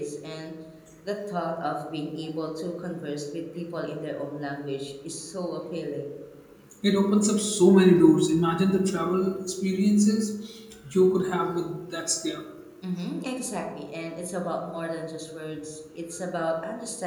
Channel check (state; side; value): identical; both; correlation 1.00